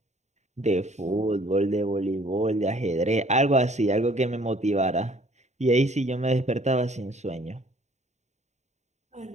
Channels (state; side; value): late; left; 0.33 ms